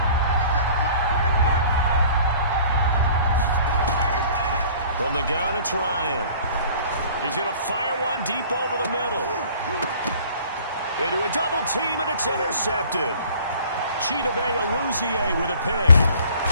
From the gun, it's Ryan. He's going to fire one deep over the middle. Into a double team, and it's intercepted. Chidobe Awuzie with a pick.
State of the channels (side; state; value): both; inverted; correlation -0.50